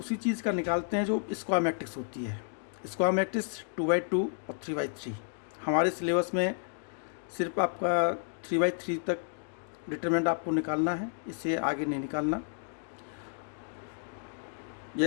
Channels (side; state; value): right; silent; digital silence